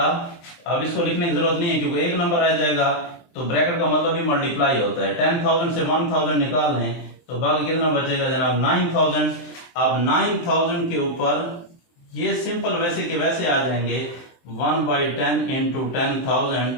अब इसको लिखने की जरूरत नहीं है क्योंकि एक नंबर रह जाएगा, तो ब्रैकेट का मतलब भी मल्टीप्लाई होता है। 10,000 से 1,000 निकाल लें तो बाकी कितना बचेगा जनाब, 9,000। अब 9,000 के ऊपर ये सिंपल वैसे के वैसे आ जाएंगे, 1/10 इंटू 10,000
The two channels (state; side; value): late; right; 23 ms